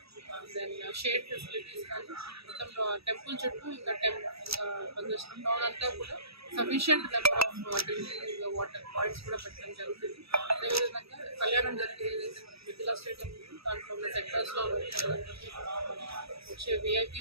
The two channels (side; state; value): left; late; 0.77 ms